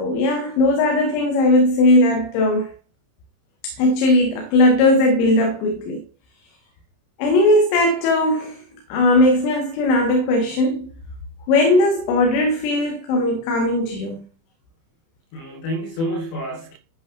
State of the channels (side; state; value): right; late; 30 ms